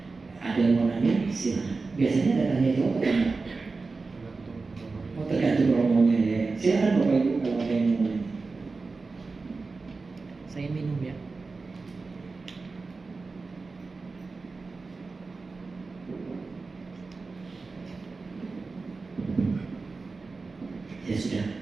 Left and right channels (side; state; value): left; quieter; 4.0 dB